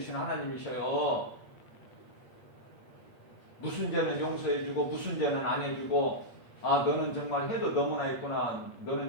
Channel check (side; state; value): right; late; 8.4 ms